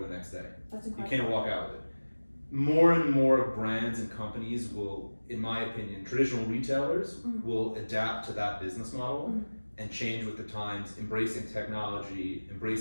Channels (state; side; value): inverted; both; correlation -1.00